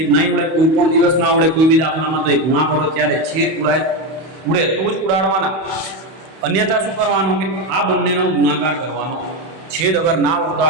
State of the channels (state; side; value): late; left; 31 ms